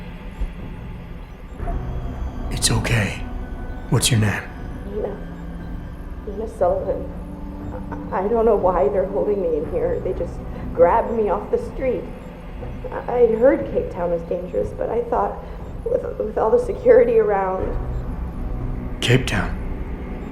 It's okay. What's your name? Nina Sullivan. I don't know why they're holding me in here. They just grabbed me off the street. I heard Cape Town was dangerous, but I thought with all the security around... Cape Town?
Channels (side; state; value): both; identical; correlation 1.00